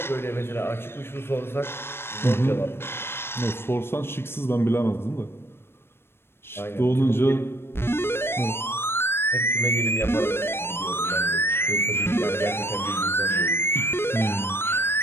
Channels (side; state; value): right; late; 0.12 ms